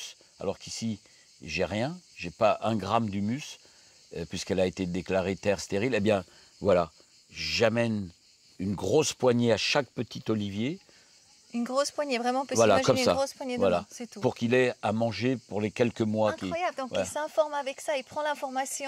alors qu'ici, j'ai rien. Je n'ai pas 1 gramme d'humus, puisqu'elle a été déclarée terre stérile. Eh bien, voilà, j'amène une grosse poignée à chaque petit olivier. Une grosse poignée, vraiment, on peut Voilà, s'imaginer comme ça. une grosse poignée de Voilà. main, c'est tout. Pour qu'il ait à manger pour les quelques mois. Incroyable, donc Voilà. il s'informe avec ça, il prend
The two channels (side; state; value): both; identical; correlation 1.00